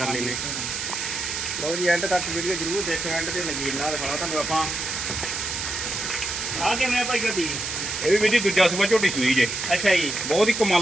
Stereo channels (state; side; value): noise; right; hiss, 4 dB below the sound